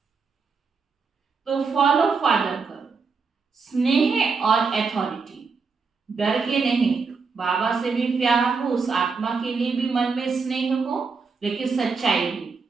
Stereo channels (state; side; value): quieter; left; 4.9 dB